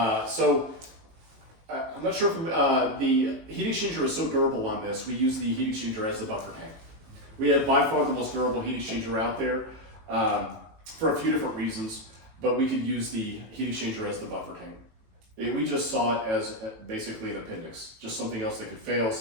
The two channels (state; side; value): late; left; 19 ms